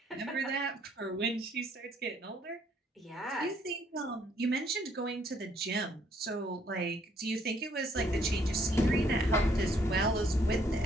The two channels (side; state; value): both; normal; correlation 0.66